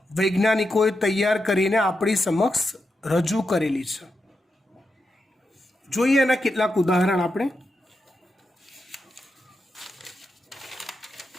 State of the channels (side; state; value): both; normal; correlation 0.87